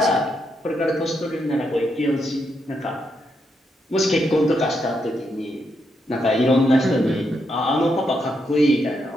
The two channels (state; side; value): normal; both; correlation 0.80